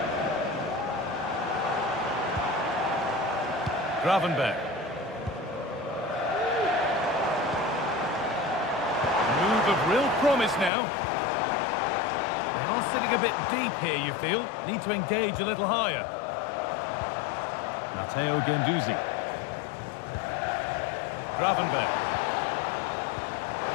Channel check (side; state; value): right; drops out; at 10.7 s